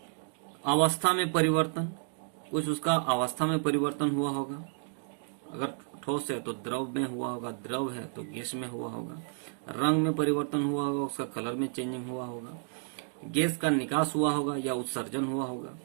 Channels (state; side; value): silent; left; 57 dB below the other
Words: अवस्था में परिवर्तन, कुछ उसका अवस्था में परिवर्तन हुआ होगा, अगर ठोस है तो द्रव में हुआ होगा, द्रव है तो गैस में हुआ होगा, रंग में परिवर्तन हुआ होगा, उसका कलर में चेंजिंग हुआ होगा, गैस का निकास हुआ होगा या उत्सर्जन हुआ होगा,